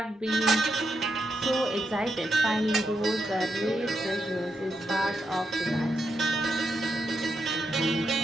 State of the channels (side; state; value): both; normal; correlation 0.82